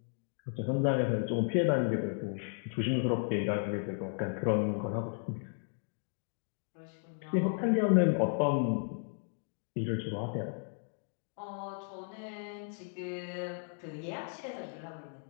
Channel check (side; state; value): right; silent; 55 dB below the other